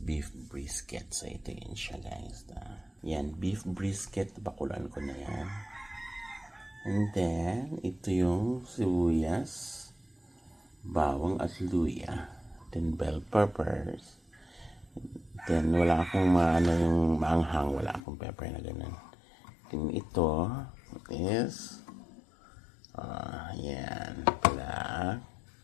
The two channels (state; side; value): drops out; right; at 18.0 s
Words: beef brisket. So ito yun siya, guys. Yan, beef brisket. Bakulan ko na yan. And then, ito yung sibuyas, bawang at luya. Then bell peppers. Then wala akong yung maanghang, wala akong pepper na ganun. Then ito is yan, black